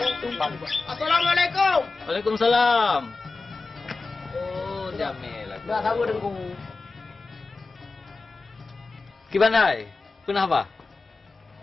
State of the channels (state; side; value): quieter; right; 3.8 dB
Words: tumpang. Assalamualaikum. Waalaikumsalam. Oh, Jamil. Dah tahu dengku. Kibanai? Kenapa?